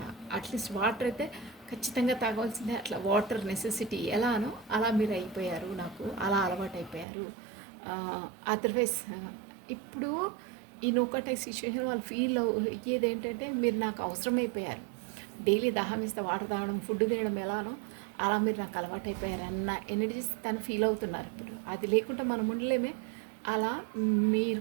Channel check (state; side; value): drops out; left; at 7.1 s